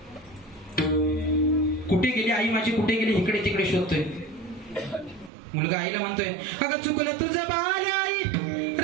कुठे गेली आई माझी, कुठे गेली, इकडे तिकडे शोधतोय. मुलगा आईला म्हणतोय अगं चुकलं तुझं बाल आई,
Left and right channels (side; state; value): left; drops out; at 5.3 s